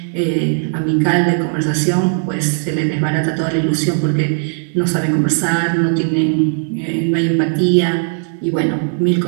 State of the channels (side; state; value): left; silent; digital silence